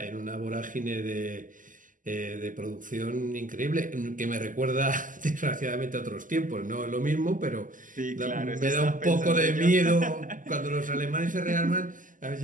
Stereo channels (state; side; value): late; left; 0.38 ms